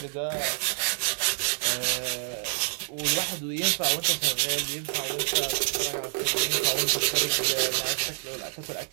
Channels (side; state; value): left; silent; 60 dB below the other